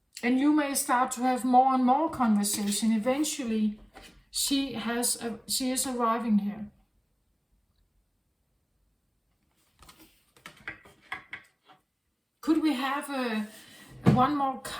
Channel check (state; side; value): identical; both; correlation 1.00